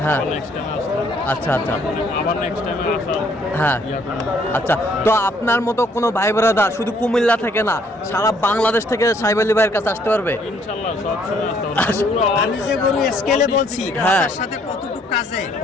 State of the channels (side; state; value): both; normal; correlation 0.65